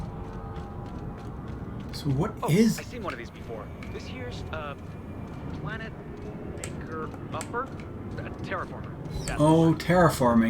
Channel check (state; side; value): identical; both; correlation 1.00